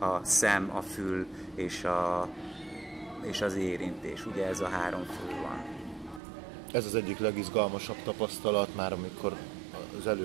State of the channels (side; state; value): left; drops out; at 6.2 s